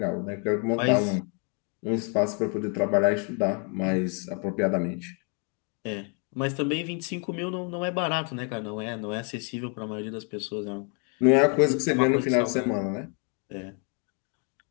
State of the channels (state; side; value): quieter; right; 37.5 dB